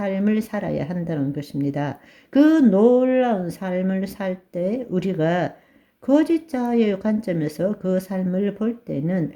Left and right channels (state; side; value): identical; both; correlation 1.00